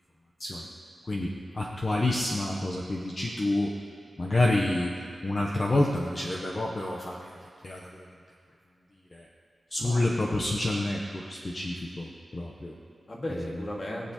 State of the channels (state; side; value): normal; both; correlation 0.95